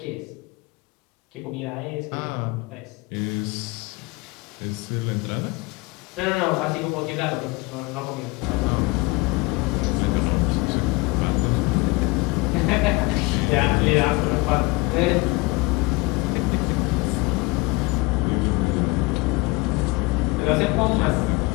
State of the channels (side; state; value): right; quieter; 24.1 dB